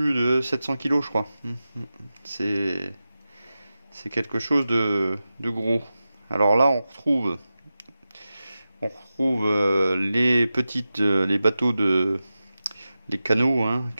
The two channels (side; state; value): both; inverted; correlation -0.93